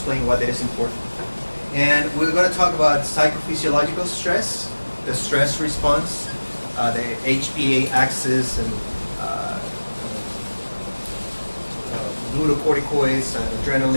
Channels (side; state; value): both; inverted; correlation -1.00